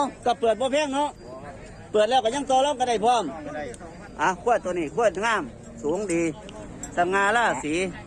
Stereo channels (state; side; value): identical; both; correlation 1.00